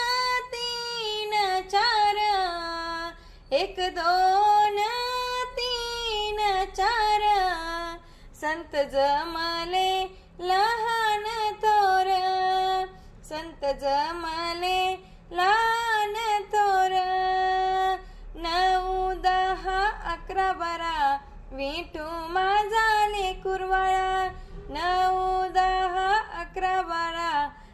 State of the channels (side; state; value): both; identical; correlation 1.00